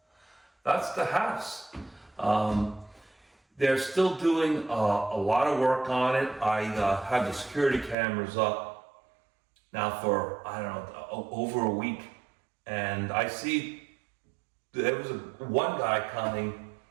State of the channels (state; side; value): drops out; left; at 8.0 s